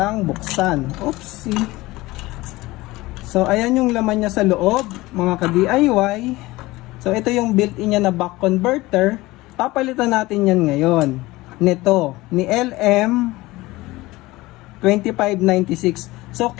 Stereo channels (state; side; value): quieter; right; 19.8 dB